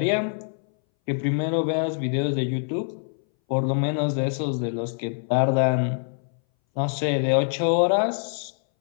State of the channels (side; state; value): right; silent; 61 dB below the other